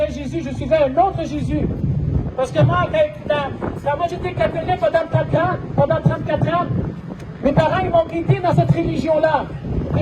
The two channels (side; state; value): both; identical; correlation 1.00